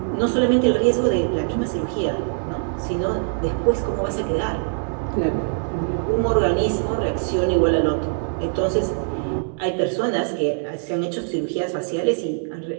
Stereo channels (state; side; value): silent; left; digital silence